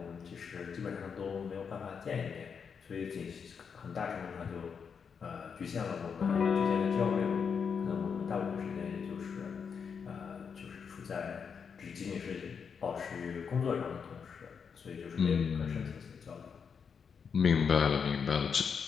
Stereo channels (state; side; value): quieter; right; 6.4 dB